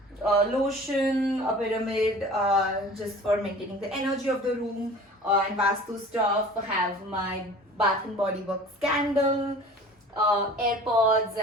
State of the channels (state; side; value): normal; both; correlation 0.43